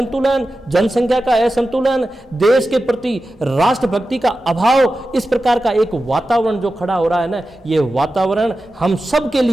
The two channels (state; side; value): normal; both; correlation 0.93